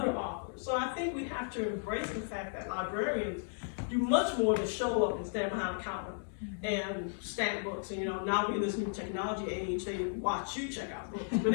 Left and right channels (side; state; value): right; silent; digital silence